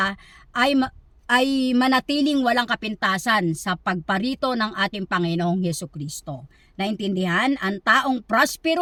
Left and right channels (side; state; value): both; identical; correlation 1.00